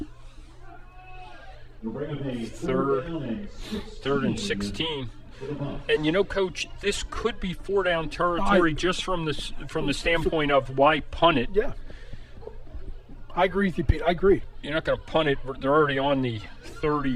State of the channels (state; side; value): identical; both; correlation 1.00